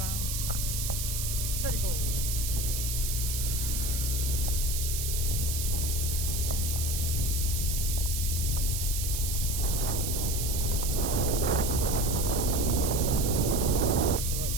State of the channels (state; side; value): noise; right; hiss, 2 dB below the sound